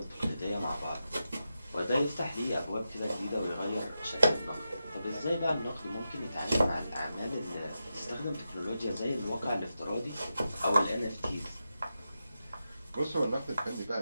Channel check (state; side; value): inverted; both; correlation -0.89